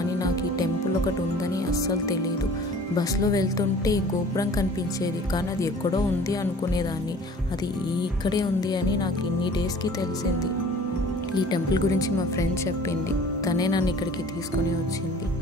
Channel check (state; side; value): normal; both; correlation 0.48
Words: నాకు ఈ టెంపుల్ ఒకటి ఉందని అస్సలు తెలియదు. బస్సులో వెళ్తుంటే ఈ గోపురం కనిపించేది, కానీ అది ఎక్కడో ఉంది అనుకునేదాన్ని. అది ఇక్కడే ఉంది అని నాకు ఇన్ని డేస్కి తెలిసింది. ఈ టెంపుల్ గురించి మా ఫ్రెండ్ చెప్పింది, తనే నన్ను ఇక్కడికి తీసుకొని వచ్చింది.